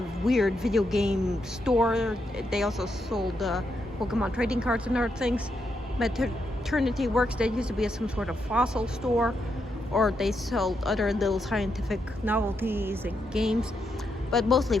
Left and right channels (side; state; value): both; normal; correlation 0.81